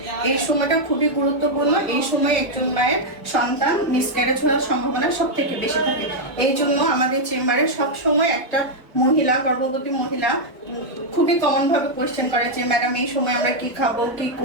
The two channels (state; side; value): normal; both; correlation -0.02